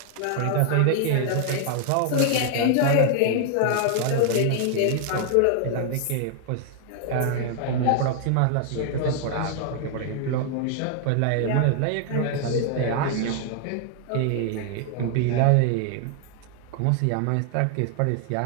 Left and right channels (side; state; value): both; different; correlation 0.00